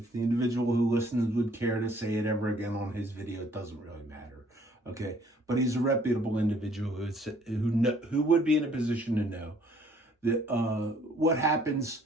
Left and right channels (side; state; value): both; normal; correlation 0.60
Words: the individual who listens would care to say it ever again on his video, it doesn't really matter, okay? But he's a reputable individual who would be in a position to know that what happens